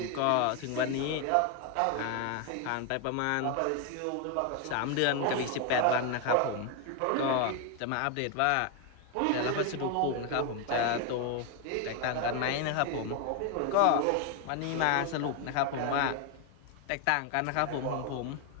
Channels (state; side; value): different; both; correlation 0.01